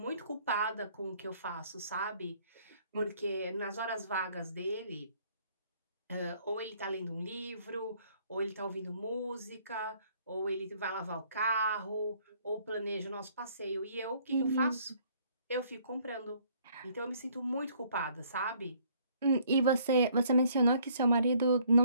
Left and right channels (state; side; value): inverted; both; correlation -0.62